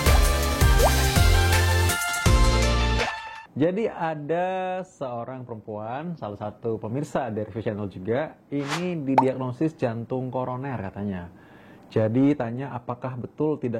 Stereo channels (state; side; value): identical; both; correlation 1.00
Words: Jadi ada seorang perempuan, salah satu pemirsa dari Channel juga, ini didiagnosis jantung koroner katanya. Jadi tanya apakah betul